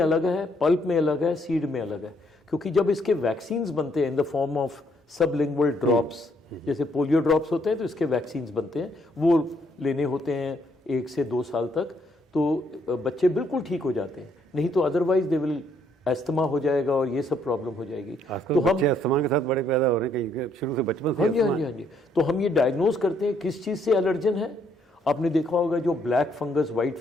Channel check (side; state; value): both; normal; correlation 0.70